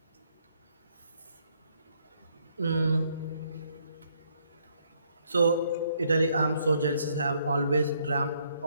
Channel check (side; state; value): both; inverted; correlation -0.70